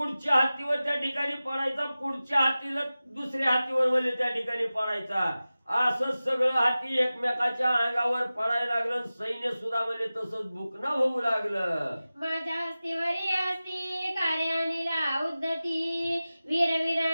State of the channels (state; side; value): inverted; both; correlation -0.96